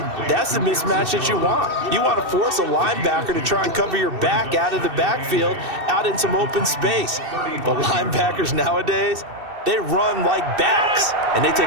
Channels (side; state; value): left; late; 2.7 ms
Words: that's the mismatch that you want. You want to force a linebacker to try and cover your back out of the backfield, out in some open space. But linebackers nowadays, they run like backs, and they